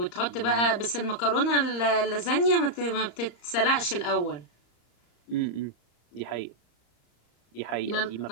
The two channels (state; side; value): late; right; 34 ms